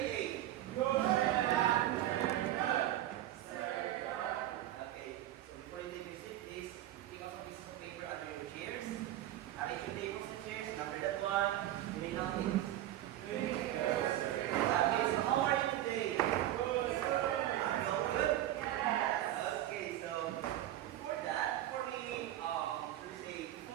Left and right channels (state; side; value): quieter; left; 13.5 dB